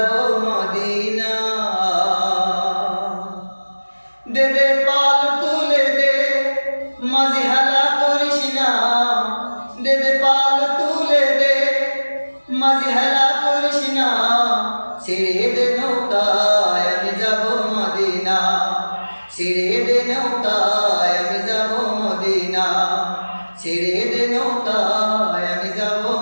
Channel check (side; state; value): both; inverted; correlation -1.00